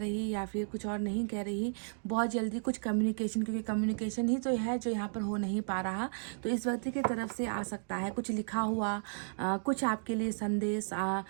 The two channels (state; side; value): silent; left; digital silence